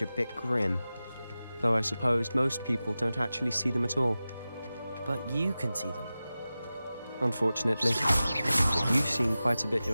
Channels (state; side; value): inverted; both; correlation -0.95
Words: a bit grim. Though I suppose most people don't actually see them at all. But you can see them. Unfortunately. But you've seen quite a bit